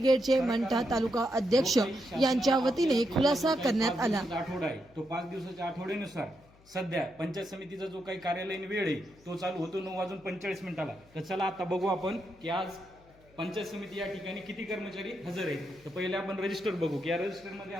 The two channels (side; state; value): left; noise; hum, 27 dB below the sound